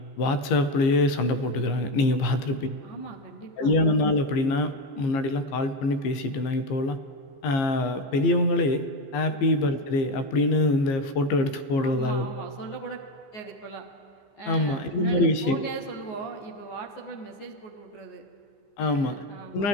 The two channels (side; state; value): right; late; 15 ms